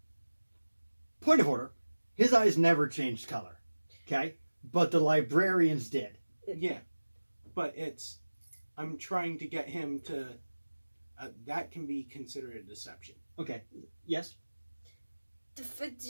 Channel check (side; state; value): both; inverted; correlation -1.00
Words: Point of order. His eyes never changed color. Okay? But the librarians did. yeah, but I'm trying to get him to, that can be considered a deception. Okay. Yes?